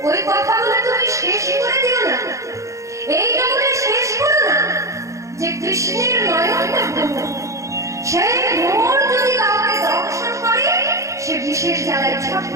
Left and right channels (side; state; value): left; late; 0.15 ms